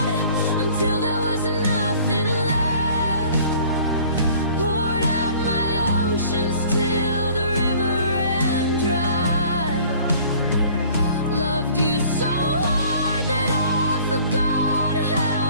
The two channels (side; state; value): both; inverted; correlation -0.51